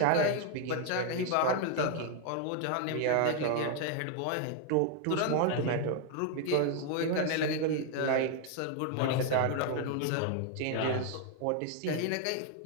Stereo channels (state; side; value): different; both; correlation 0.00